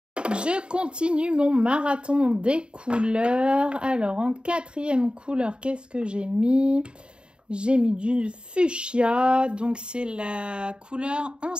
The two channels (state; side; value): late; left; 0.052 ms